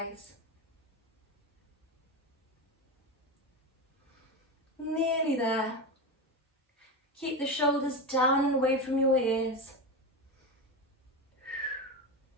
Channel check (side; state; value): both; normal; correlation 0.18